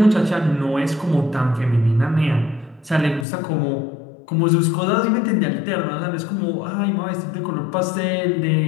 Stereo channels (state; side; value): drops out; right; at 3.2 s